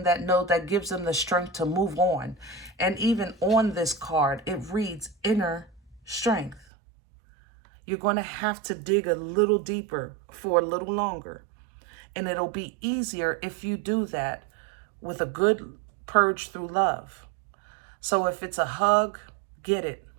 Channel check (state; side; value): drops out; left; at 6.7 s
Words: that gives them the strength to move on. And even on this card, it reads inner strength. You're going to have to dig a little deeper for a little longer. And it'll be easier if you do that with a good purge through love. So if it's a hug, get it.